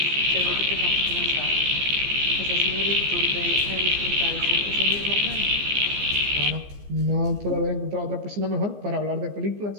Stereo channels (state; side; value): late; left; 15 ms